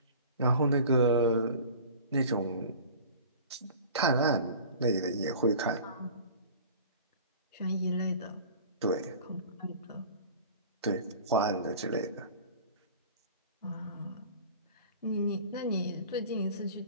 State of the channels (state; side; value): inverted; both; correlation -0.42